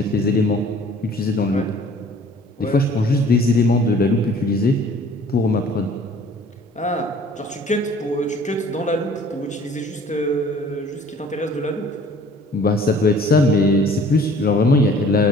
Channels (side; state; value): both; normal; correlation 0.51